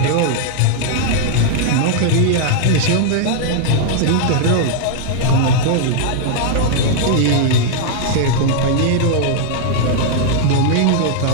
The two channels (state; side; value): different; both; correlation -0.01